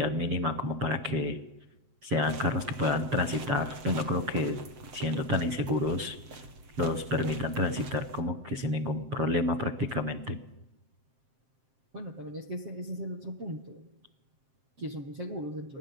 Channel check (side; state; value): left; late; 7.6 ms